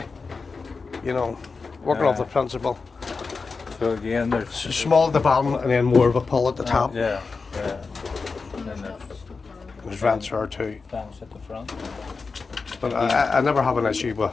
You know, working off the principle. So again, there's So small at the bottom and then more of a pull at the top. Yeah. Yeah. And then there's There's vents there too. fans at the front. But I never have an issue with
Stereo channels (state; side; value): quieter; right; 4.5 dB